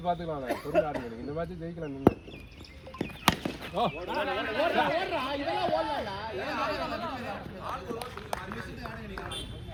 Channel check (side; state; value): both; identical; correlation 1.00